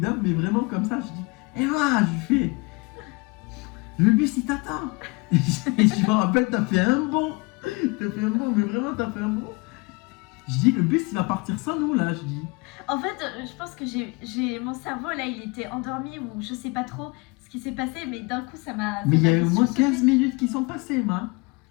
mais vraiment comme ça. Je dis, Emma, je fais, le bus il t'attend. Et je me rappelle, t'as fait un bond. Mais vraiment, t'as fait un bond. Je dis, le bus il va partir sans nous là, je dis. En fait, je pense que j'ai mon cerveau là, il était endormi ou je sais pas trop ce qui s'est passé, mais d'un coup ça m'a. Mais il y a fait eu au moins sursauter. 15 minutes qui sont passées, Emma.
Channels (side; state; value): right; quieter; 27.8 dB